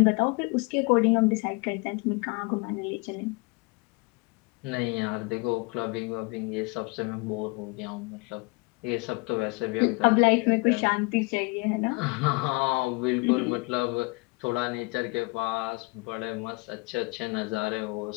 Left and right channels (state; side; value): quieter; right; 28.1 dB